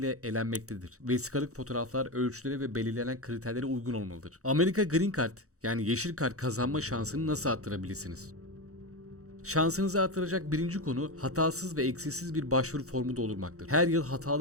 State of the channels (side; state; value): left; late; 0.65 ms